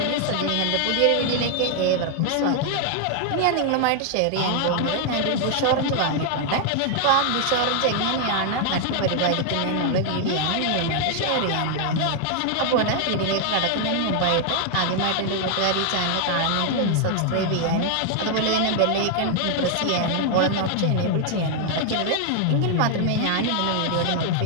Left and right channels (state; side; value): different; both; correlation 0.00